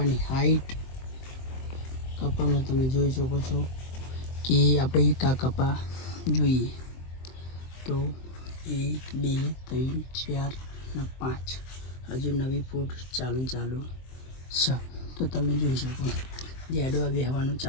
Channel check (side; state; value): right; late; 23 ms